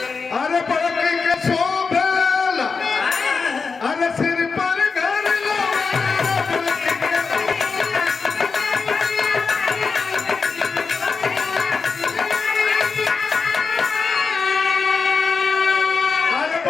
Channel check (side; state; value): right; quieter; 4.9 dB